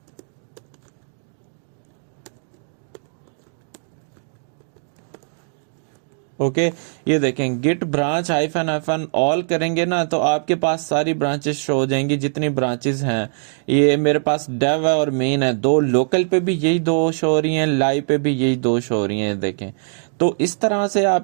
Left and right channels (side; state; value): left; silent; digital silence